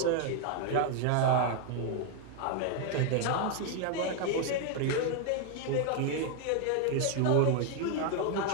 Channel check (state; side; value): different; both; correlation 0.00